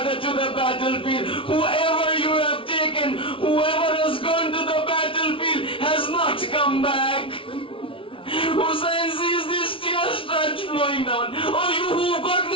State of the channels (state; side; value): late; right; 0.25 ms